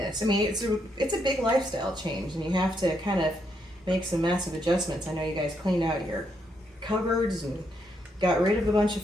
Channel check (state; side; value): normal; both; correlation 0.77